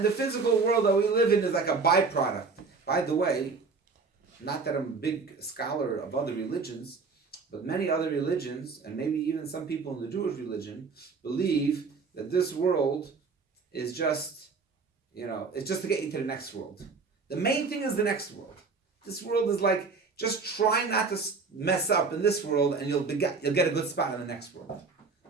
the physical world that we live in is like a byproduct. By the way, not that I'm a big scholar of other religions, but many other religions, and maybe even some people in the Jewish religion, believe that this world is just, it's just to get you to the next world. The main thing is the next world. This world is like, just try not to mess up in this world and you'll get a good spot in the next world.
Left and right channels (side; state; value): left; quieter; 4.6 dB